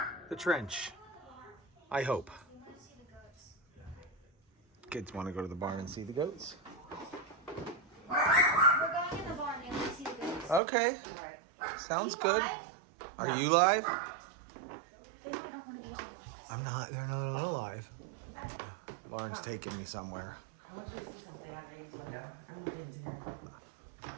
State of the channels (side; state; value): left; drops out; at 10.6 s